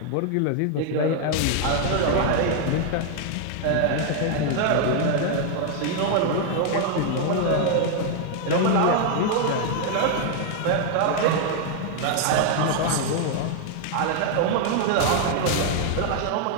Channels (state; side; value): different; both; correlation 0.00